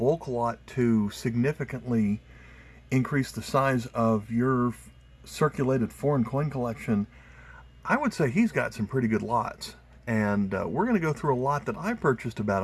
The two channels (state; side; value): identical; both; correlation 1.00